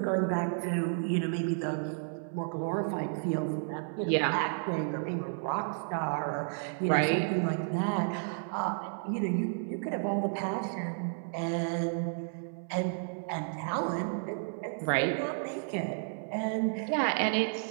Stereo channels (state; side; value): silent; left; 56 dB below the other